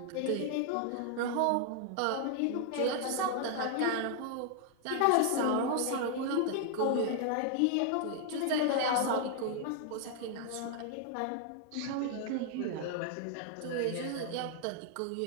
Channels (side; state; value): both; different; correlation 0.00